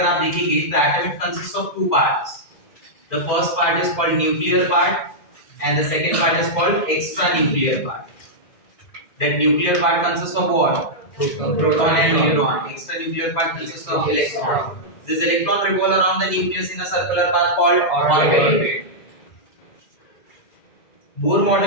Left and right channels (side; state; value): right; late; 2.0 ms